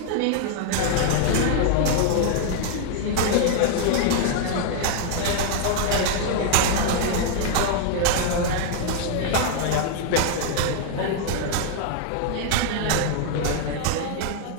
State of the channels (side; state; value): both; different; correlation 0.00